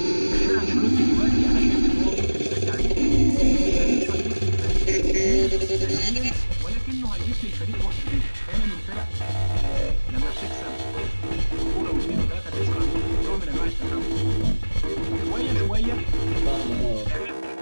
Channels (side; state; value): both; inverted; correlation -1.00